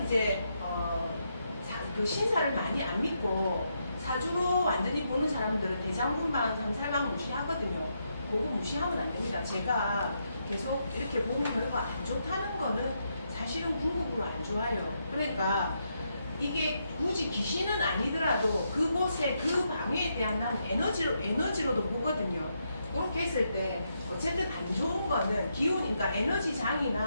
이제 그 신사를 많이 안 믿고 사주로 완전히 보는 사람들은 대장군방, 삼살방 무시하거든요. 그거 무시하면 안 됩니다. 제가 계속 이렇게 보면 별거 안 좋다는 거는 사실은 궁극으로 안 좋아요. 그러니까 이게 굳이 귀신은 아니더라도 그곳에 그 방위에 대한 난 에너지로도 보거든요. 그렇게 했을 때 어쨌든 안 좋은 거는 기운, 그러니까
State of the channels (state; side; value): inverted; both; correlation -0.80